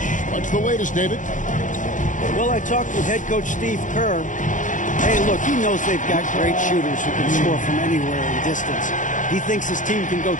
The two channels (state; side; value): late; right; 0.37 ms